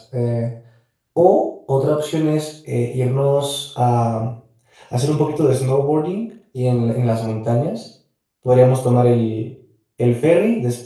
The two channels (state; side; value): identical; both; correlation 1.00